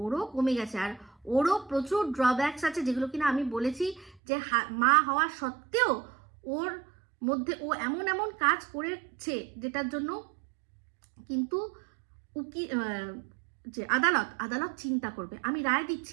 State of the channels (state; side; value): drops out; left; at 4.2 s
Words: আর ওরও প্রচুর ড্রব্যাকস আছে, যেগুলো কিনা আমি বলেছি যে মা হওয়া সত্ত্বেও ওর মধ্যে ও এমন কাজ করেছে যেটার জন্য কিন্তু যে আদালত চিন্তা করবে। আমি রায়